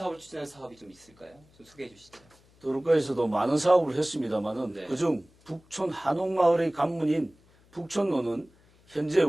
추진한 사업이 좀 있을까요? 좀 소개해 주시죠. 도로과에서도 많은 사업을 했습니다만은 네. 그중 북촌 한옥마을의 관문인 북촌로는 현재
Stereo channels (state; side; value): noise; left; hum, 30 dB below the sound